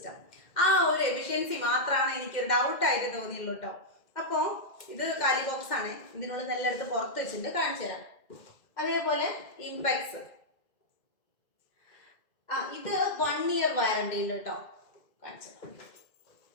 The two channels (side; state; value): right; late; 2.1 ms